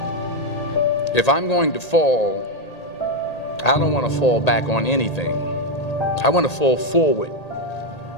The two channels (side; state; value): right; late; 1.8 ms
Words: If I'm going to fall, I don't want to fall back on anything. I want to fall forward.